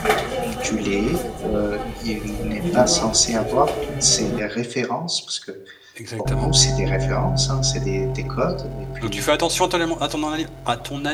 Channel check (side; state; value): both; identical; correlation 1.00